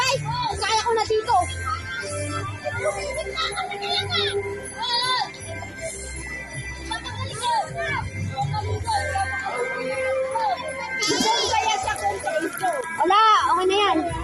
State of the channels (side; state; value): both; identical; correlation 1.00